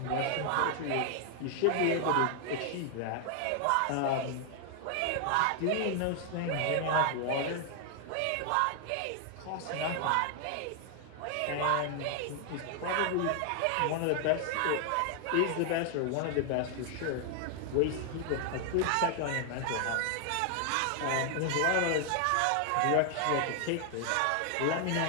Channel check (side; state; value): both; different; correlation 0.00